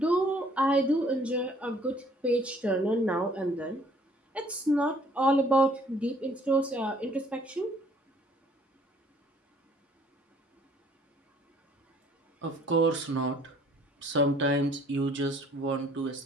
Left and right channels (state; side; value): normal; both; correlation 0.59